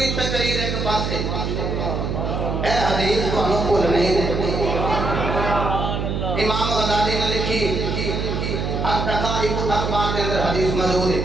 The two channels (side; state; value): right; noise; hum, 2 dB below the sound